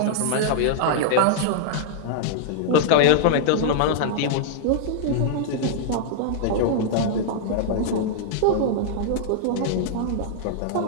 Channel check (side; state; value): both; different; correlation -0.01